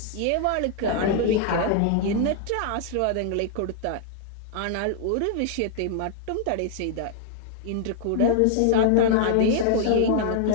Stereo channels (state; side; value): different; both; correlation -0.01